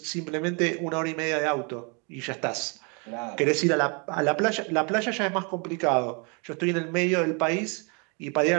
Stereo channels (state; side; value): quieter; left; 33.7 dB